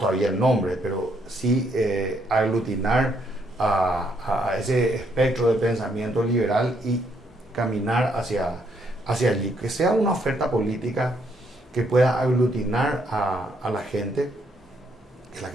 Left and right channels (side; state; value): both; normal; correlation 0.72